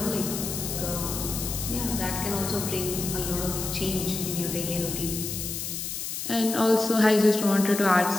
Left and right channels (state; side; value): noise; left; hiss, 5 dB below the sound